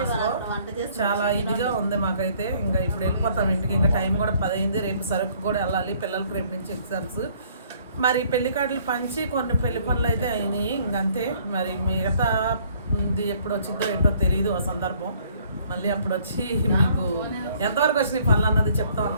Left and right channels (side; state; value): both; inverted; correlation -0.61